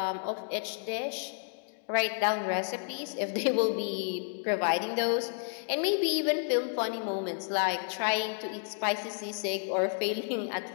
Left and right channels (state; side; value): silent; right; digital silence